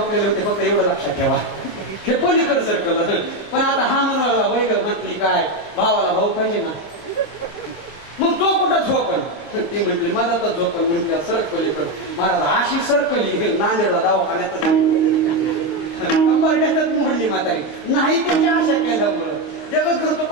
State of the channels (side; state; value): right; late; 26 ms